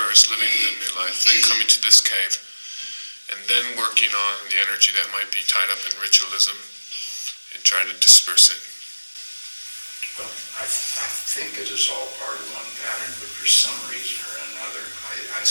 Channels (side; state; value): both; inverted; correlation -1.00